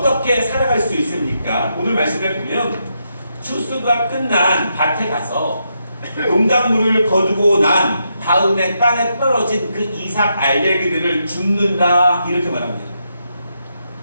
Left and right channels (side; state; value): both; inverted; correlation -0.81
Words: 살아갈 수 있습니까? 오늘 말씀을 보면 추수가 끝난 밭에 가서 농작물을 거두고 난 다음에 땅에 떨어진 그 이삭 알갱이들을 줍는다, 이렇게 말합니다.